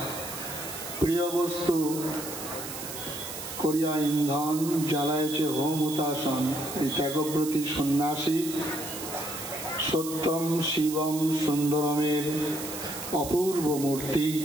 প্রিয় বস্তু করিয়া ইন্ধন জ্বালায়ছে হোম হুতাসন। এই ত্যাগব্রতী সন্ন্যাসী সত্যম শিবম সুন্দরমের অপূর্ব মূর্তি।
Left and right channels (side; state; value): right; noise; hiss, 9 dB below the sound